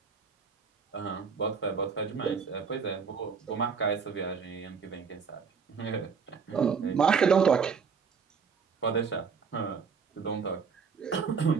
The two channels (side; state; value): left; quieter; 5.8 dB